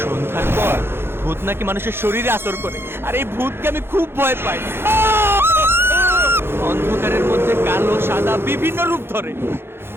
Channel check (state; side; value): late; left; 0.11 ms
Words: সন্ধ্যার পর ভূত নাকি মানুষের শরীরে আসর করে, আর এই ভূতকে আমি খুব ভয় পাই। অন্ধকারের মধ্যে কালো সাদা বিভিন্ন রূপ ধরে,